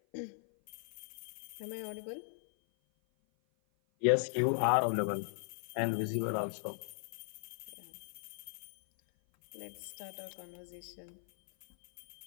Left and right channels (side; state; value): right; silent; 52 dB below the other